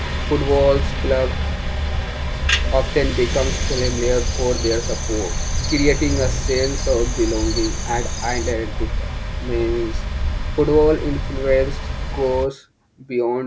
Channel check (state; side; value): identical; both; correlation 1.00